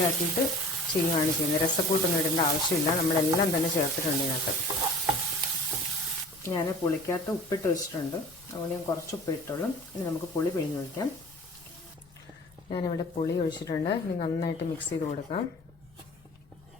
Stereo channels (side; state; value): left; noise; rumble, 28 dB below the sound